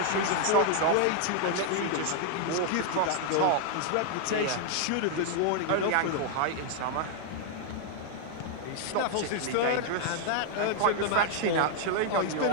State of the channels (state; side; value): different; both; correlation 0.00